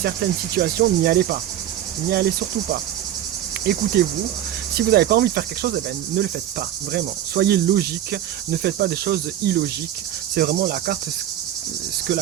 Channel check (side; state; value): left; quieter; 11.5 dB